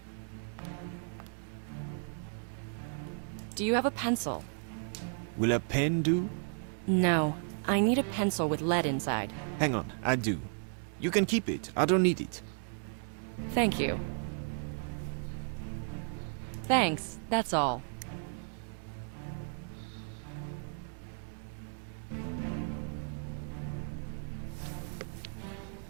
Do you have a pencil? Will a pen do? No. I need a pencil with lead inside. Hang on, I do. You can keep it. I don't need it. Thank you. Thanks, that's all.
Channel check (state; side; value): silent; left; digital silence